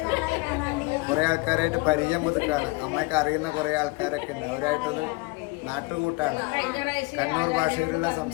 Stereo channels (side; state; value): right; quieter; 25.4 dB